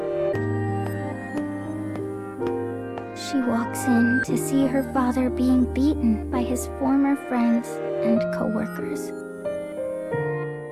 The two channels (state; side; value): identical; both; correlation 1.00